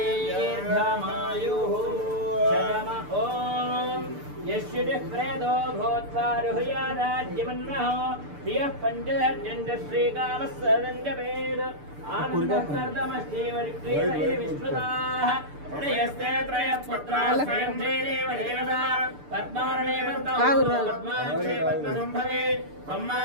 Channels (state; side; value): late; left; 6.8 ms